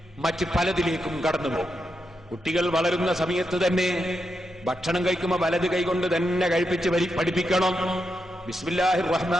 മറ്റ് പലതിലേക്കും കടന്നു പോകും. കുട്ടികൾ വളരുന്ന സമയത്ത് തന്നെ ഭക്ഷണം കഴിക്കുമ്പോൾ വലത് കൈകൊണ്ട് തന്നെ കഴിപ്പിച്ച് പഠിപ്പിക്കണം. ബിസ്മില്ലാഹിർ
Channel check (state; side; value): normal; both; correlation 0.85